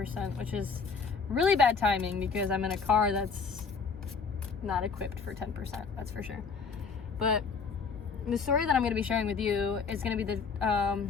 which is really bad timing because I'm in a car that's not equipped for 10%, that's for sure. But the story that I'm going to be sharing with you is going to be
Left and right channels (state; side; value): quieter; right; 5.4 dB